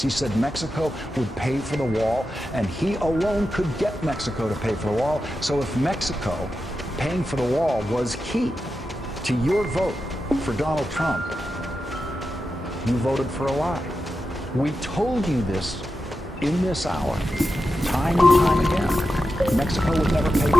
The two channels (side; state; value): both; normal; correlation 0.90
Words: He said Mexico would pay for the wall, and he alone could get Mexico to pay for the wall. So if Mexico paying for the wall was key to your vote for Donald Trump, you voted for a lie. We told you this in this hour, time and time again. Mexico would never pay for